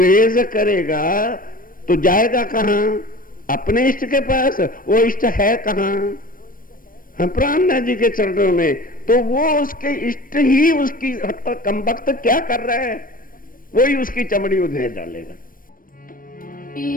करेगा तो जाएगा कहां, अपने इष्ट के पास। वो इष्ट है कहां, प्राणनाथ जी के चरणों में। तो वो उसके इष्ट ही उसकी कम वक्त क्या कर रहा है, वही उसकी चमड़ी उधेड़ डालेगा।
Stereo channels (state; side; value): late; right; 0.41 ms